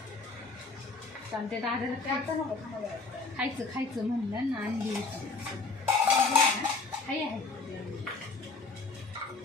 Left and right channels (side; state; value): right; quieter; 3.9 dB